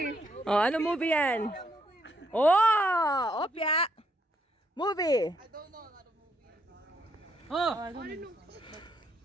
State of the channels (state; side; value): normal; both; correlation 0.74